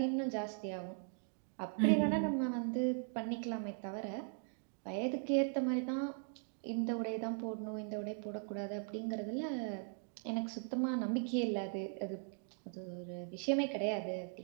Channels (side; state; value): left; silent; 52 dB below the other